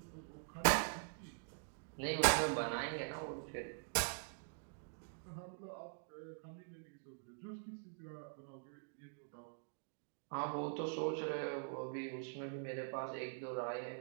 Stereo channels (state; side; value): silent; left; digital silence